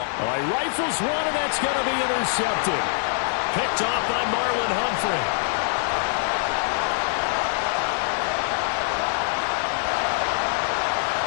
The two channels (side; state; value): right; silent; digital silence